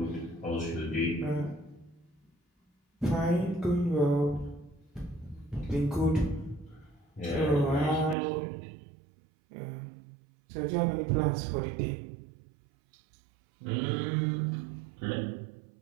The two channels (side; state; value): left; drops out; at 8.2 s